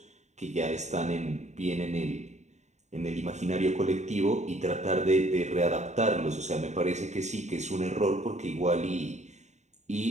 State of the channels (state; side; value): late; left; 0.34 ms